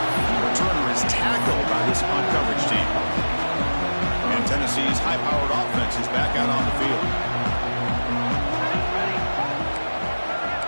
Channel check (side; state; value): both; inverted; correlation -1.00